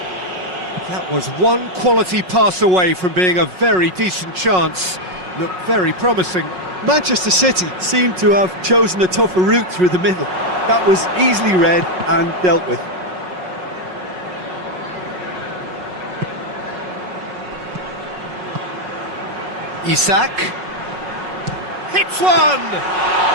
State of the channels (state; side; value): late; left; 5.4 ms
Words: That was one quality pass away from being a very decent chance. Looked very promising. Manchester City seemed to have chosen a tougher route through the middle. That was easily read and dealt with. Isak hits one!